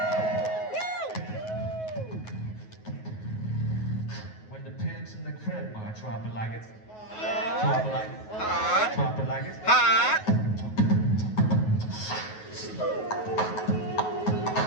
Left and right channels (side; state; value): right; late; 9.4 ms